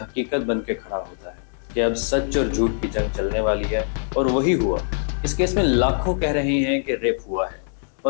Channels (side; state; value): right; silent; digital silence